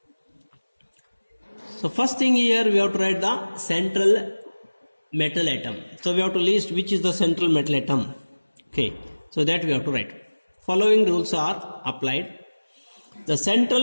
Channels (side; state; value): both; inverted; correlation -1.00